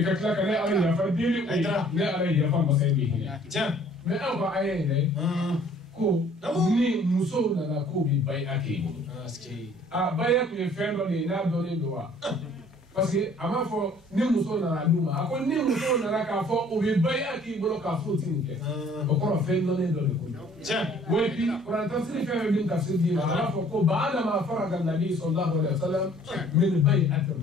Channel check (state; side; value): normal; both; correlation 0.56